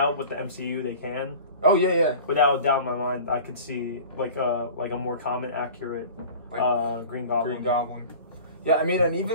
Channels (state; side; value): inverted; both; correlation -0.40